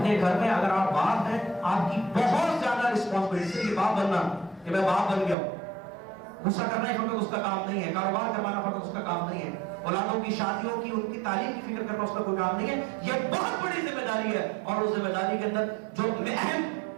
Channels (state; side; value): drops out; left; at 5.4 s